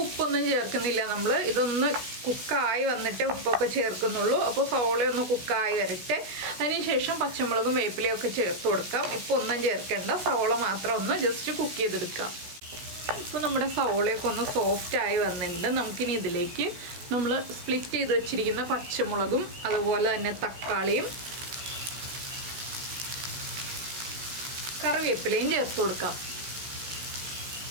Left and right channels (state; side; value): late; left; 16 ms